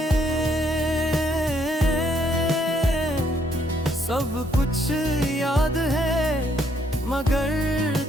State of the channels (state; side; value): normal; both; correlation 0.70